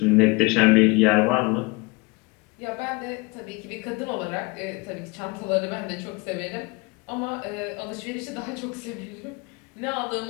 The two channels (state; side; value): quieter; right; 26.0 dB